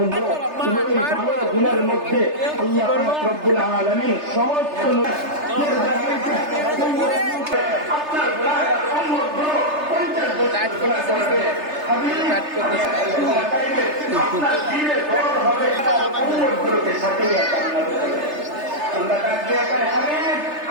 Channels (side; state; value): left; late; 3.3 ms